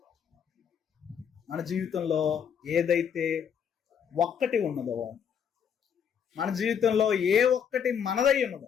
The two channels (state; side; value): quieter; right; 7.8 dB